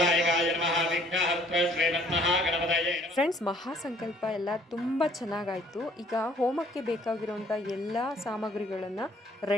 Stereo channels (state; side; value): normal; both; correlation 0.59